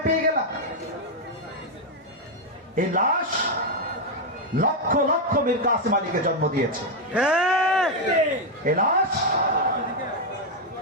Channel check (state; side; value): normal; both; correlation 0.02